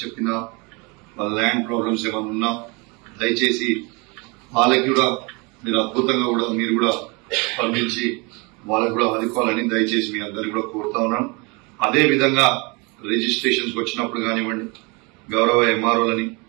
వాళ్ళ ల్యాండ్ ప్రాబ్లమ్స్ ఏమైనా ఉన్నా దయచేసి వాళ్ళకి కూడా మీరు అద్భుతంగా కూడా మీరు కూడా స్పందించి వాళ్ళకు కూడా ఆదుకోవాలని దయచేసి మీ అందరికీ కూడా కోరుతా ఉన్నాను. అదేవిధంగా రిజిస్ట్రేషన్స్ వచ్చినప్పుడు కానివ్వండి, గౌరవ ఎంఆర్ఓలని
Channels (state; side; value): quieter; left; 28.7 dB